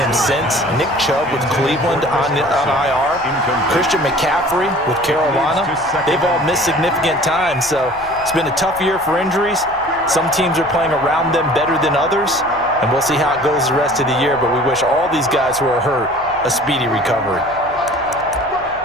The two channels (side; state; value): left; noise; hum, 23 dB below the sound